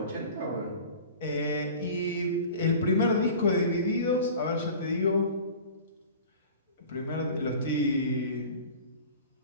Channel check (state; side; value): inverted; both; correlation -0.40